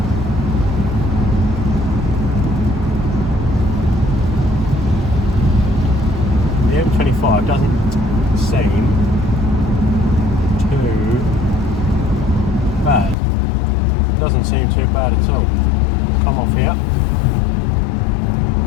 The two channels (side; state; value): right; drops out; at 13.2 s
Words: The M25 doesn't seem too bad. Doesn't seem too bad at all. Come off here.